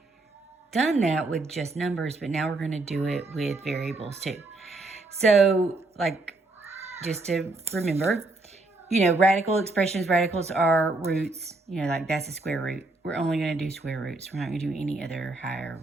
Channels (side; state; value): left; quieter; 3.1 dB